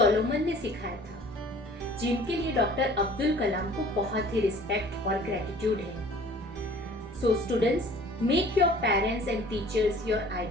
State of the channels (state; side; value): normal; both; correlation 0.49